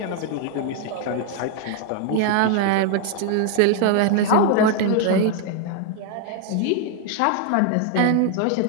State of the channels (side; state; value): both; different; correlation 0.00